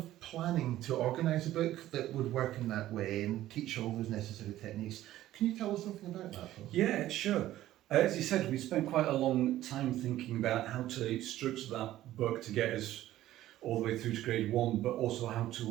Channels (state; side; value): quieter; left; 14.2 dB